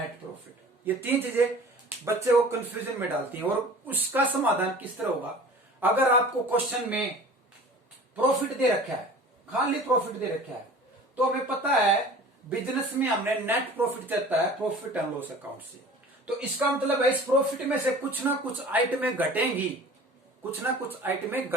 प्रॉफिट, ये 3 चीजें बच्चे को कंफ्यूजन में डालती हैं। और उसका समाधान किस तरह होगा, अगर आपको क्वेश्चन में प्रॉफिट दे रखा है, खाली प्रॉफिट दे रखा है, तो हमें पता है बिजनेस में हमने नेट प्रॉफिट देता है प्रॉफिट एंड लॉस अकाउंट से, तो इसका मतलब है इस प्रॉफिट में से कुछ ना कुछ आइटमें घटेंगी, कुछ ना कुछ आइटमें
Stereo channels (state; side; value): normal; both; correlation 0.43